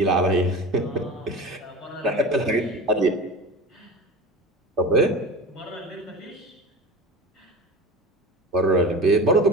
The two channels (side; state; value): both; normal; correlation 0.32